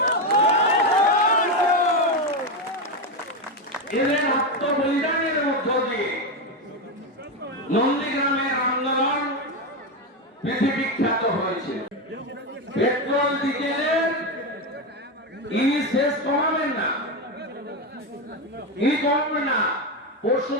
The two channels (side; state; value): both; normal; correlation 0.11